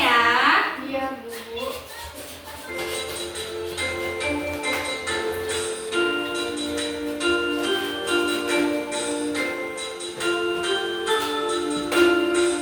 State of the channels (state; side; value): identical; both; correlation 1.00